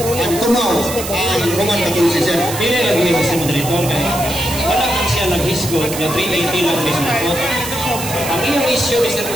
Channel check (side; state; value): right; noise; hiss, 8 dB below the sound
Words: tumaw ang Roman Catholicism. Dili lagi ni Mr. Moderator kaya wala kang siya nag-hisgot na 380 lang Mr. Ang iyong issue, Mr.